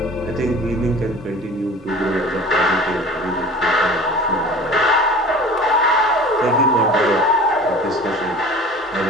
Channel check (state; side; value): normal; both; correlation 0.41